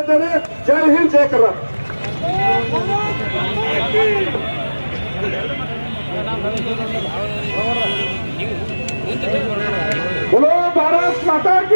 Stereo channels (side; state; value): both; inverted; correlation -1.00